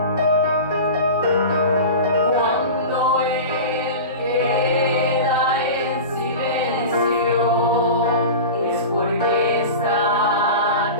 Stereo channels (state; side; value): inverted; both; correlation -0.30